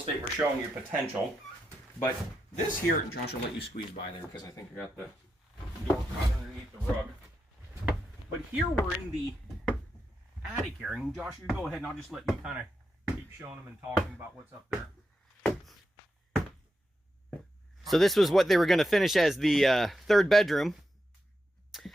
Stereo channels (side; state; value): both; normal; correlation 0.86